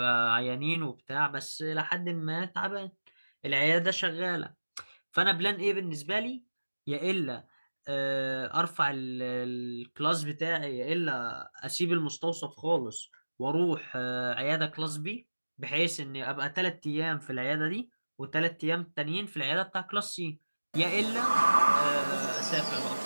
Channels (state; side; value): inverted; both; correlation -1.00